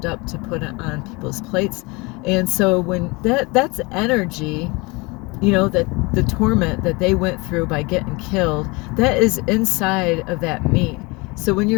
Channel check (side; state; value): right; quieter; 26.2 dB